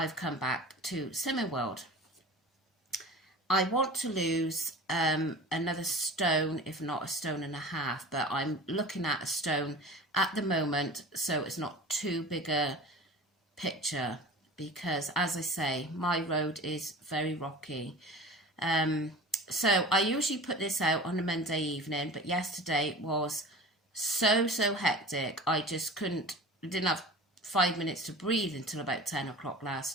come back to Slimming World. I want to lose another stone, if not a stone and a half, but I'm looking at a stone at the moment, so it's not too big a picture, because as I say, my road is very rocky. So I usually put this out on a Monday evening, but yesterday was so hectic. I just didn't have 5 minutes to breathe until about 10 o'clock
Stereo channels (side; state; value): both; normal; correlation 0.37